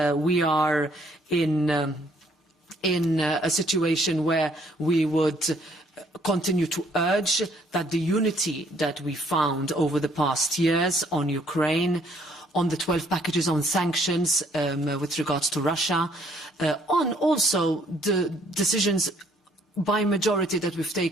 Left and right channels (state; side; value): normal; both; correlation 0.64